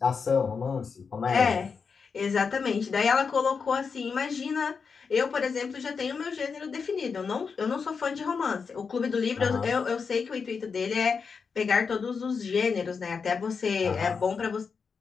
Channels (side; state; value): right; quieter; 5.6 dB